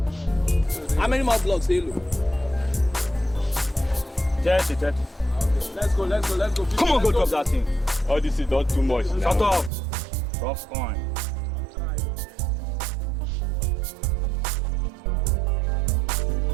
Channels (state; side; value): drops out; left; at 9.7 s